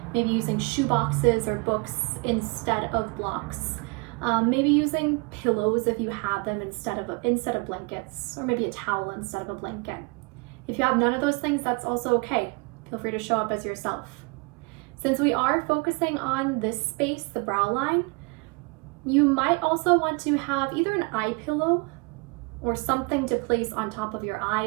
Maybe using shoe boxes or books instead of blocks. Maybe using pillows if you have them instead of blankets, or maybe a towel instead of a blanket. If you have none of those things, that's also okay. Feel free to show up as yourself. Since we are focusing on this space, the brow line, you might also want to have either an eye pillow or something to place on top of your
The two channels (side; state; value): left; quieter; 29.4 dB